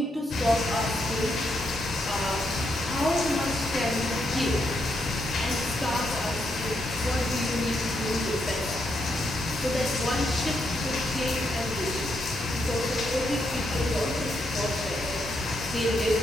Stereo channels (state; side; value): normal; both; correlation 0.79